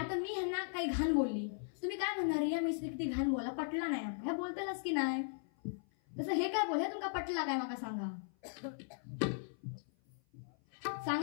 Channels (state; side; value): silent; right; 52 dB below the other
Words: मी ह्यांना काही घाण बोलली, तुम्ही काय म्हणणार, या मिस्त्री किती घाण बोला, पटला नाही ह्या बोलतालच की नाही. तसं हे काय बोल, हे तुमका पटला काय मला सांगा.